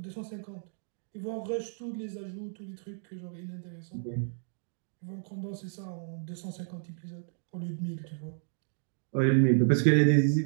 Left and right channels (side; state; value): left; silent; digital silence